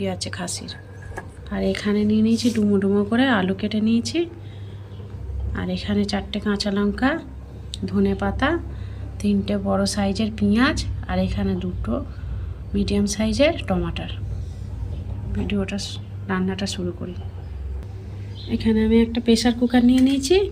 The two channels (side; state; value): both; identical; correlation 1.00